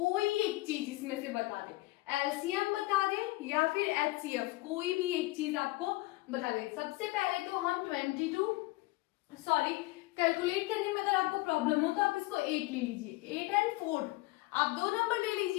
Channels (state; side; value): quieter; right; 20.8 dB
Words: एक चीज इसमें से बता दे, एलसीएम बता दे या फिर एचसीएफ, कोई भी एक चीज आपको बता दे। सबसे पहले तो हम कैलकुलेट करने में अगर आपको प्रॉब्लम हो तो आप इसको 8 ले लीजिए, 8 एंड 4। आप दो नंबर ले